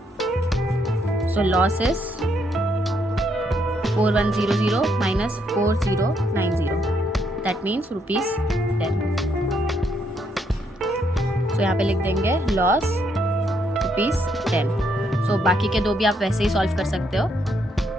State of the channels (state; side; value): normal; both; correlation 0.74